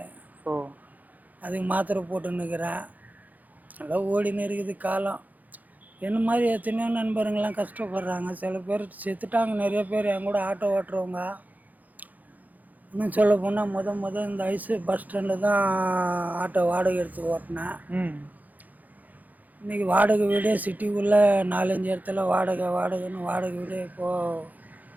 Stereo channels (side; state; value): left; late; 0.081 ms